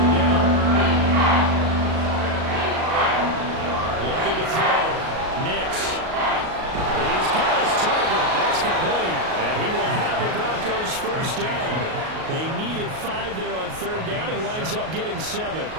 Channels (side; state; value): left; late; 38 ms